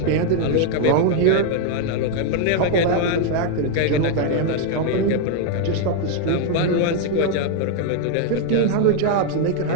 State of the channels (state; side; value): different; both; correlation 0.00